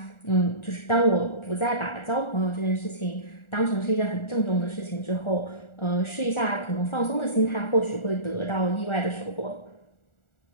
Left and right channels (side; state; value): right; late; 1.4 ms